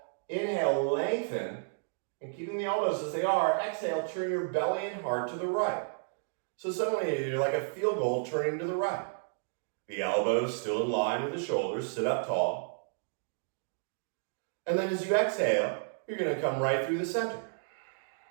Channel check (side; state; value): left; silent; digital silence